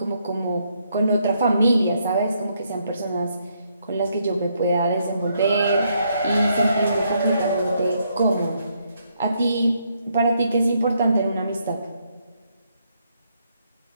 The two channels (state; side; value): inverted; both; correlation -0.75